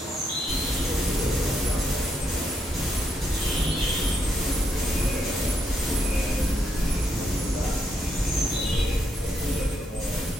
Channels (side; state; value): both; normal; correlation 0.78